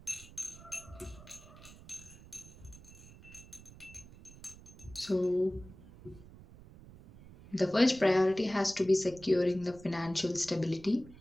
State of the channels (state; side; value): noise; right; rumble, 19 dB below the sound